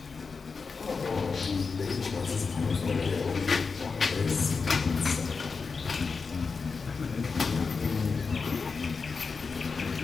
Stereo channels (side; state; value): right; quieter; 4.9 dB